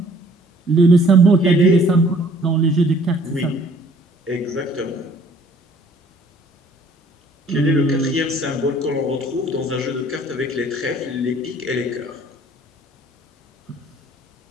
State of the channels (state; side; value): normal; both; correlation 0.57